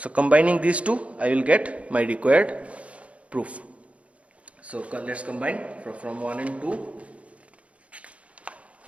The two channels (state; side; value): late; left; 0.064 ms